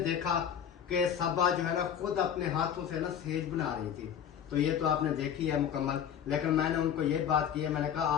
देखा कि सबा जो है ना खुद अपने हाथों से ना सेज बना रही थी, तो ये तो आपने देखी है मुकम्मल। लेकिन मैंने उनको ये बात की है, मैंने कहा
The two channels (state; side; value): quieter; right; 8.8 dB